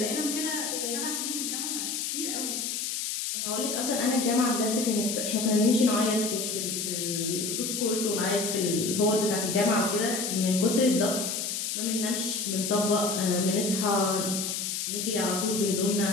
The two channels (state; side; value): noise; left; hiss, 2 dB below the sound